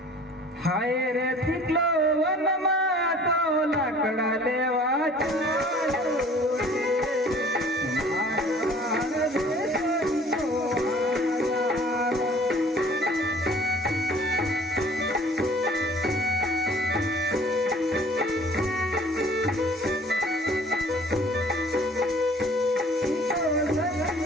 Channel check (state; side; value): normal; both; correlation 0.51